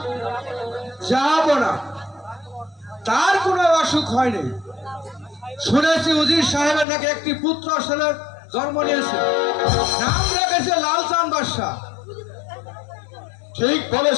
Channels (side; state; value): right; drops out; at 6.9 s